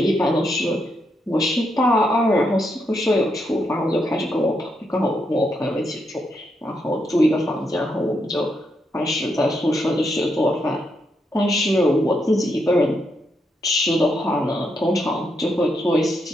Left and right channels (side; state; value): both; normal; correlation 0.80